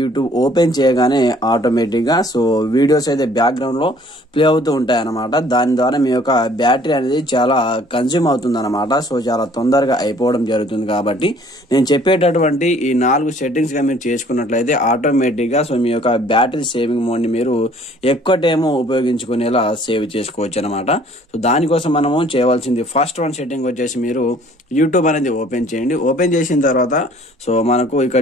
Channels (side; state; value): both; normal; correlation 0.56